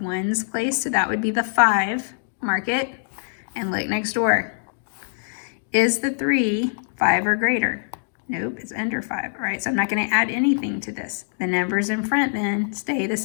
place, so that would be the 5. Mark it and look next door. Is the 3 5 or greater? Nope, it's under 5. All right, so I'm not going to add anything to this. The numbers in front then stay the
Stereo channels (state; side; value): silent; right; digital silence